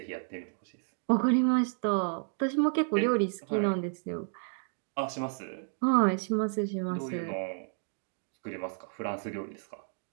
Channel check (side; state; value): left; silent; digital silence